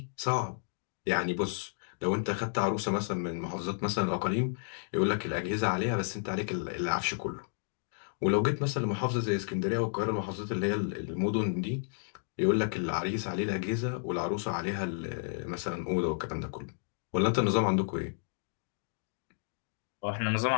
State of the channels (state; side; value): silent; right; digital silence